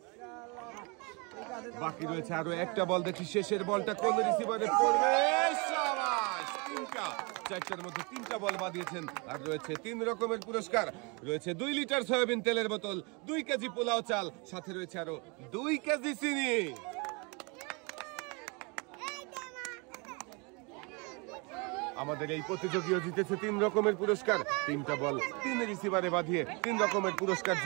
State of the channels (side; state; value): left; quieter; 30.6 dB